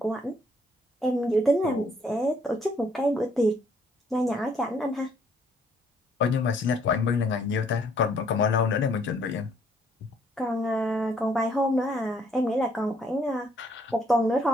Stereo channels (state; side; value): normal; both; correlation 0.65